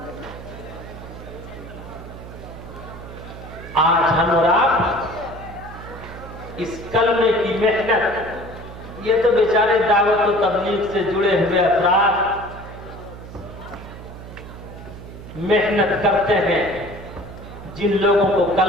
आज हम और आप इस कलमे की मेहनत, ये तो बेचारे दावत और तबलीग से जुड़े हुए अफराद मेहनत करते हैं, जिन लोगों को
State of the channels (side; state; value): right; noise; hum, 14 dB below the sound